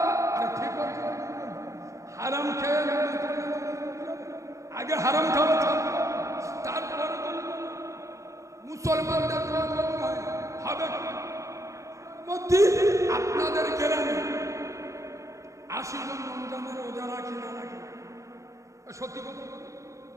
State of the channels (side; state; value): left; late; 0.15 ms